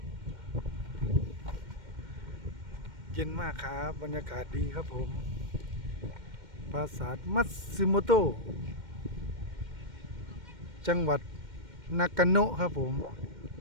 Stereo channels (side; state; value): left; late; 2.1 ms